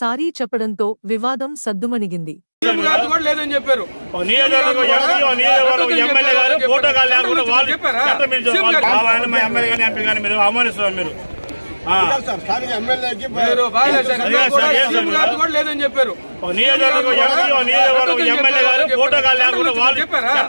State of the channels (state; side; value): inverted; both; correlation -1.00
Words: సారీ చెప్పడంతో వివాదం సద్దుమణిగింది. చెప్పారు